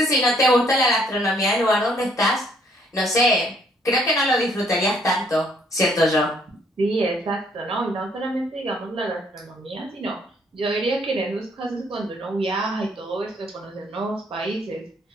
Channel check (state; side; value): normal; both; correlation 0.66